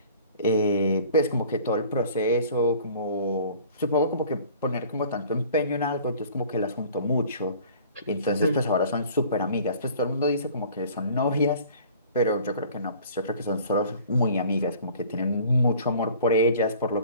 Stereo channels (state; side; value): inverted; both; correlation -0.49